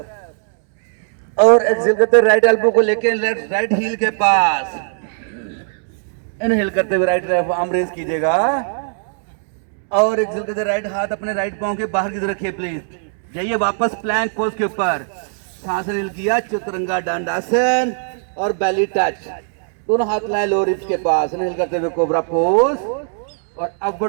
और एक्सेल करते राइट एल्बो को लेके लेफ्ट राइट हील के पास। इनहेल करते हुए राइट आर्म रेज कीजिएगा और एक्सेल करते राइट हाथ अपने राइट पांव के बाहर की तरफ रखिए प्लीज। जाइए वापस प्लैंक पोज के ऊपर, सांस इनहेल किया, चतुरंगा दंडासन और बेली टच, दोनों हाथ लाए लोअर रिब्स के पास। इनहेल करते हुए कोबरा पोज और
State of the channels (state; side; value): silent; left; digital silence